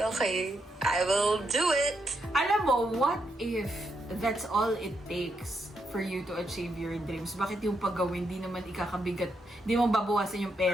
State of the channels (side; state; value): both; normal; correlation 0.80